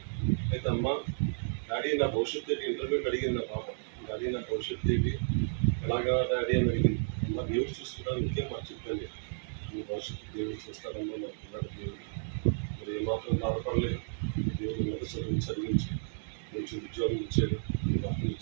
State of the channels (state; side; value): silent; left; digital silence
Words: అయితే అమ్మ డాడీ నా భవిష్యత్తు ఏంటి ఇంటర్వ్యూకి అడిగింది నా పాప. డాడీ నా భవిష్యత్తు ఏంటి ఎలాగా డాడీ అని అడిగింది. అమ్మ దేవుడు చూసుకుంటాను ఇంకేం మాకు చెప్పండి. మీ భవిష్యత్తు దేవుడు చూస్తారమ్మా నాకు పిల్లడు దేవుడు. మరి ఏమాత్రం బాధపడలేదు. దేవుడు మొదటి చదివించి మంచి ఉద్యోగం ఇచ్చాడు, వాటిని